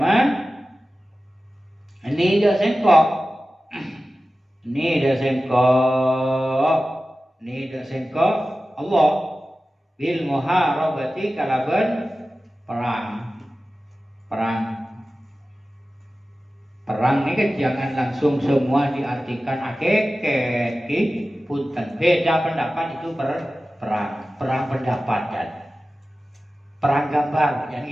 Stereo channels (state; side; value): normal; both; correlation 0.95